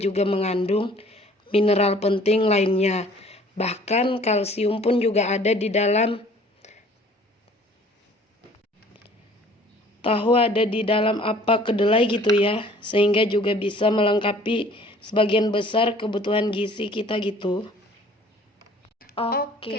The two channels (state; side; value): normal; both; correlation 0.53